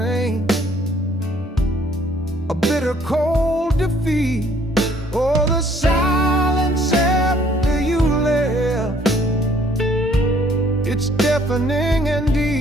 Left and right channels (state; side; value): normal; both; correlation 0.61